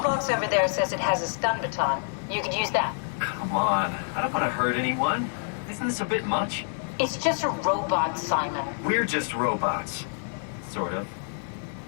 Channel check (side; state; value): right; silent; 55 dB below the other